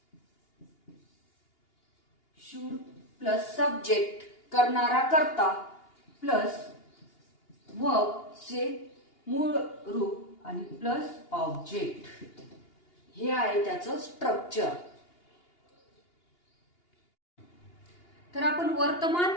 शुड प्लस सब्जेक्ट करणारा कर्ता प्लस वर्बचे मूळ रूप आणि प्लस ऑब्जेक्ट, हे आहे त्याचं स्ट्रक्चर. तर आपण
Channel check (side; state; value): right; late; 2.8 ms